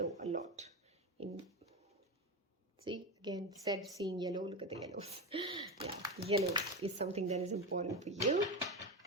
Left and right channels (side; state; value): both; normal; correlation 0.18